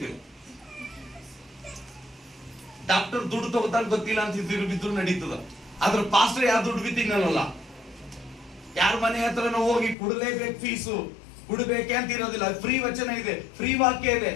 ಡಾಕ್ಟರ್ ದುಡ್ಡು ತಗೋತಾರ ಗೊತ್ತಿಲ್ಲ ಅಂತ ಬಿದ್ರು ನಡೀತದ. ಆದ್ರೆ ಪಾಸ್ಟರ್ ಯಾರು ದುಡ್ಡು ಬಿತ್ತಿನಲ್ಲ, ಯಾರ ಮನೆ ಹತ್ರ ನಾವು ಹೋಗಿ ಕೊಡಲೇಬೇಕು, ಫೀಸು ಕೊಡಬೇಕೆ ಅಂತ ಇರೋದಿಲ್ಲ. ಫ್ರೀ ವಚನ ಇದೆ, ಫ್ರೀ ವಾಕ್ಯ ಇದೆ.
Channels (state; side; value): drops out; right; at 10.0 s